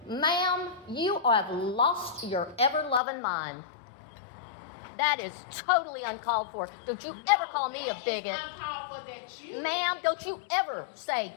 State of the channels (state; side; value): drops out; right; at 3.0 s